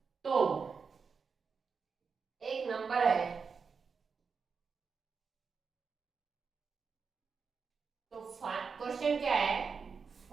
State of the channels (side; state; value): left; quieter; 5.5 dB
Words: तो एक नंबर है, तो क्वेश्चन क्या है